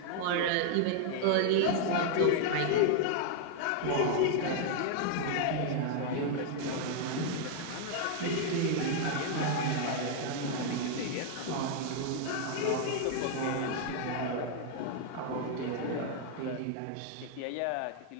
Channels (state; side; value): different; both; correlation 0.00